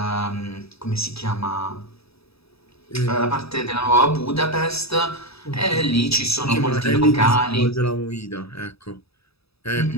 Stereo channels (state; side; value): late; right; 0.77 ms